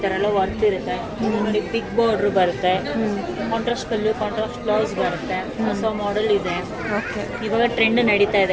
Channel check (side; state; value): both; identical; correlation 1.00